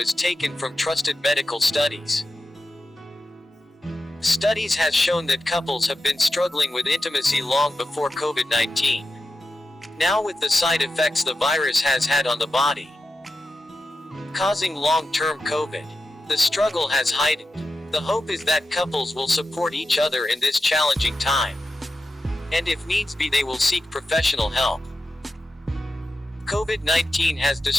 taken from trusted medical studies. Studies has shown that couples have been struggling with intimacy long before COVID-19. Now with the side effects the virus has had on the body, causing long-term COVID, the struggle has heightened. The hope is that couples will support each other in this challenging time, and if needs be they will seek professional help. COVID-19 has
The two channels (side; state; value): both; normal; correlation 0.90